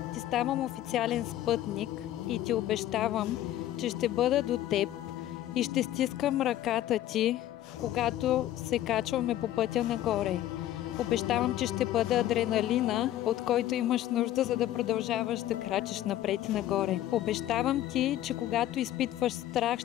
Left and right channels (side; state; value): right; quieter; 13.2 dB